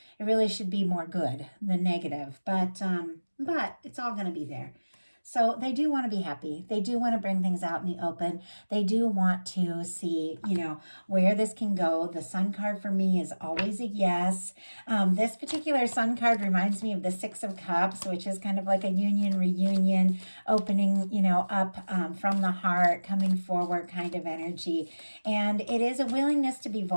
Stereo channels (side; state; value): both; inverted; correlation -1.00